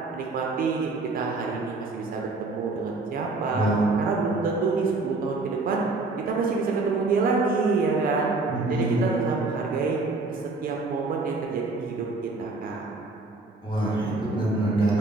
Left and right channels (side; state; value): left; quieter; 3.4 dB